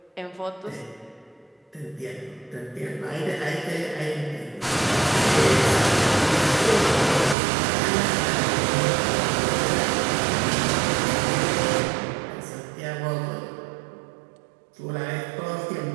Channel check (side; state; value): left; drops out; at 7.4 s